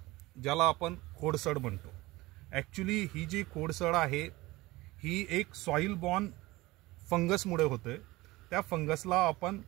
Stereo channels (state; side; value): quieter; left; 20.0 dB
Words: ज्याला आपण खोडसड म्हणतो। ॲक्च्युली ही जी खोडसड आहे ही एक सॉइल बॉर्न फंगसमुळे होते। त्या फंगसला आपण